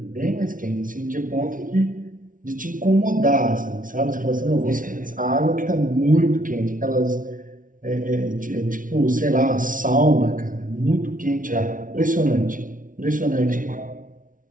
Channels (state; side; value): late; left; 0.38 ms